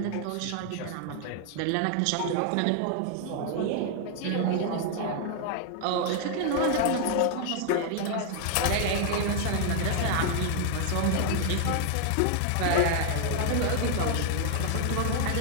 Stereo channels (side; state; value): both; different; correlation 0.00